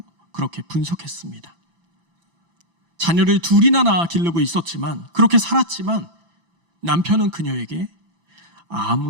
그렇게 분석했습니다. 자녀를 둘이나 낳아 기르고 있었지만, 그렇게 살았지만 남편은 그녀에게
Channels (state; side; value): late; left; 5.9 ms